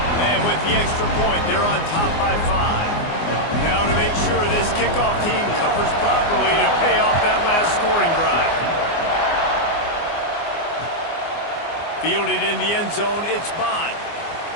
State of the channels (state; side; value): late; right; 24 ms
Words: And with the extra point, they're on top by 5. Now to make sure this kickoff team covers properly to pay off that last scoring drive. Fielded in the end zone, it's Bond.